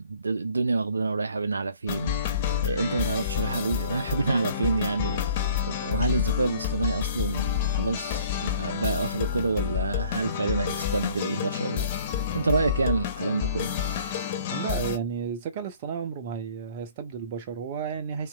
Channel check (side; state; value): both; inverted; correlation -0.54